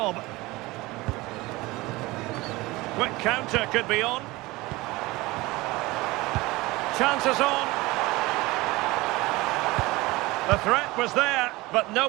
Quick counter could be on. Chances on. The threat was there, but no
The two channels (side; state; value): left; quieter; 21.1 dB